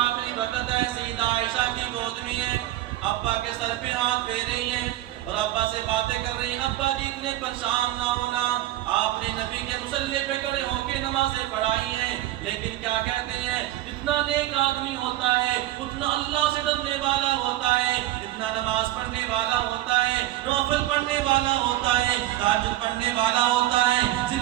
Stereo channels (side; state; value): left; quieter; 14.9 dB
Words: آخری وقت ہے، سیدہ عائشہ کی گود میں ہے، ابا کے سر پہ ہاتھ پھیر رہی ہیں اور ابا سے باتیں کر رہی ہیں، ابا جی اتنے پریشان نہ ہونا، آپ نے نبی کے مصلی پہ کھڑے ہو کے نمازیں پڑھائی ہیں، لیکن کیا کہتے ہیں جتنا نیک آدمی ہوتا ہے اتنا اللہ سے ڈرنے والا ہوتا ہے، اتنا نماز پڑھنے والا ہوتا ہے، نوافل پڑھنے والا ہوتا ہے، تہجد پڑھنے والا ہوتا ہے،